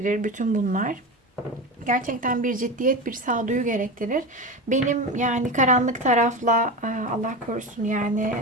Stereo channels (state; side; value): normal; both; correlation 0.23